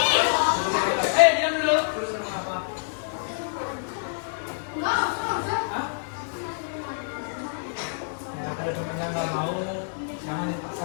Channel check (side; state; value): right; silent; digital silence